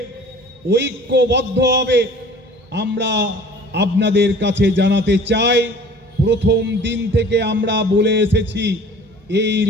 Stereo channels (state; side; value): normal; both; correlation 0.47